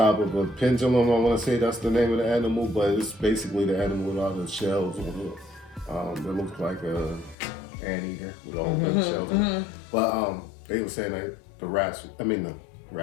of a pendulum. I want to say that's the name of the animal, but it's basically the animal with all the shells on it. It looks like a anteater with all the shells on it. But they were saying that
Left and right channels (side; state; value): right; drops out; at 7.4 s